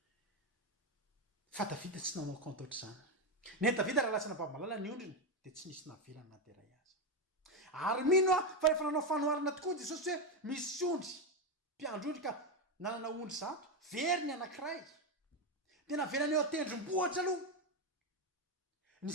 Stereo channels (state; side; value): normal; both; correlation 0.10